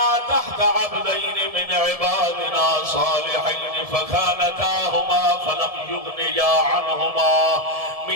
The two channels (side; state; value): left; late; 1.7 ms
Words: تحت عبدين من عبادنا صالحين فخانتاهما فلم يغنيا عنهما